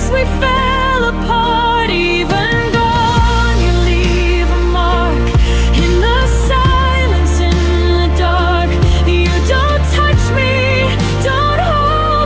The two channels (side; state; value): both; identical; correlation 1.00